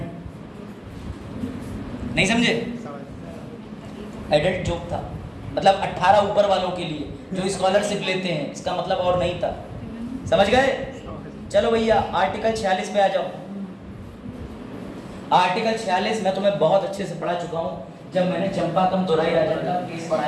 नहीं समझे? एडल्ट जोक था, मतलब 18 ऊपर वालों के लिए जो स्कॉलरशिप लेते हैं, इसका मतलब और नहीं था। समझ गए? चलो भैया आर्टिकल 46 पे आ जाओ। आर्टिकल 46 मैं तुम्हें बहुत अच्छे से पढ़ा चुका हूँ जब मैंने चंपाकम दोराई राजन का केस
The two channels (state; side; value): identical; both; correlation 1.00